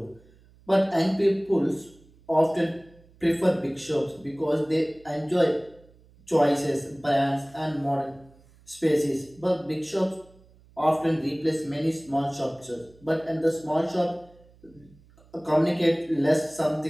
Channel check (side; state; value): right; noise; hum, 28 dB below the sound